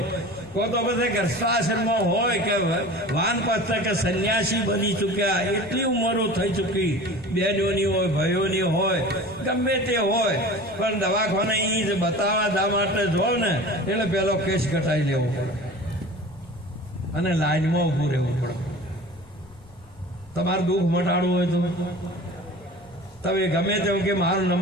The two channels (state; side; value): noise; left; rumble, 24 dB below the sound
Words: તો પછી ગર્ભાશ્રમમાં હોય કે વાનપ્રસ્થ કે સંન્યાસી બની ચૂક્યા, એટલી ઉંમરો થઈ ચૂકી, બહેનોની હોય, ભાઈઓની હોય, ગમે તે હોય, પણ દવાખાને એ જ બતાવવા દા માટે જો ને એટલે પેલો કેસ ઘટાઈ લેવો પડે અને લાઈનમાં ઊભું રહેવું પડે. તમારું દુઃખ મટાડવું હોય તો તમે ગમે તેમ કે મારો